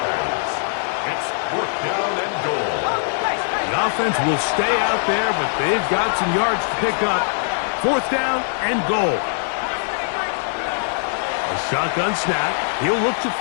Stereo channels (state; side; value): silent; right; digital silence